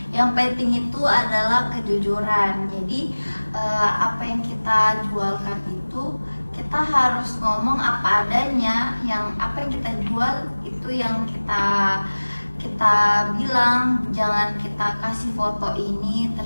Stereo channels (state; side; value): inverted; both; correlation -1.00